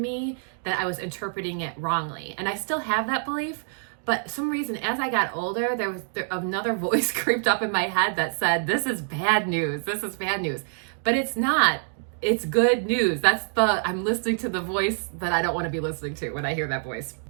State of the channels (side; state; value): left; silent; digital silence